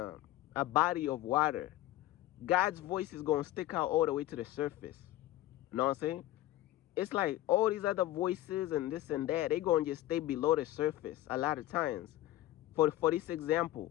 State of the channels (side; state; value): right; quieter; 15.2 dB